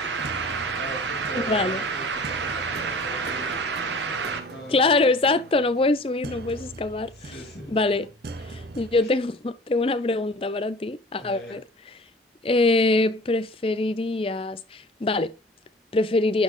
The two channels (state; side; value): normal; both; correlation 0.44